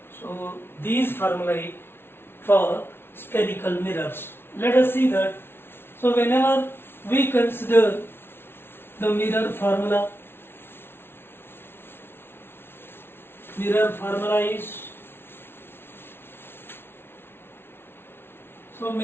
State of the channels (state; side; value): late; right; 0.11 ms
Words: So these formulae for spherical mirrors. Let us see that. So whenever we consider the mirror formula is, so